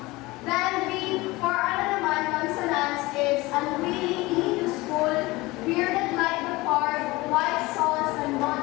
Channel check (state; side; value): quieter; right; 21.3 dB